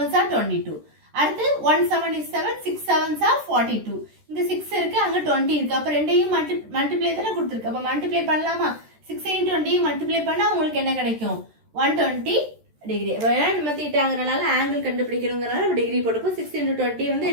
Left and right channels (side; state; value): left; late; 13 ms